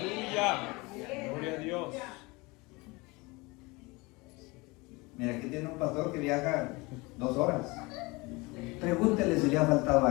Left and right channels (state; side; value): quieter; right; 24.7 dB